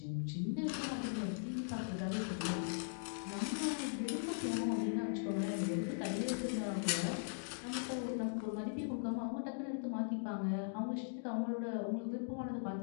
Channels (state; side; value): silent; right; digital silence